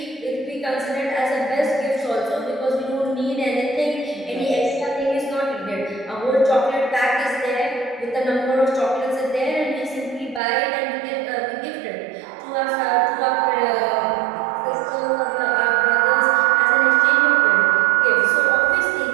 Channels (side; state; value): left; drops out; at 10.4 s